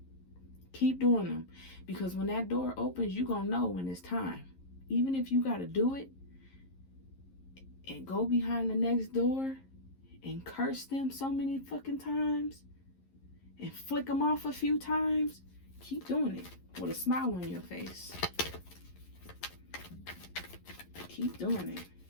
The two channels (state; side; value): late; right; 11 ms